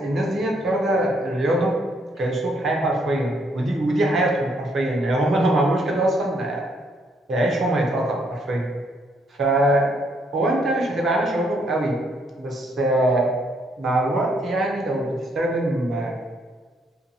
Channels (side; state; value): both; normal; correlation 0.71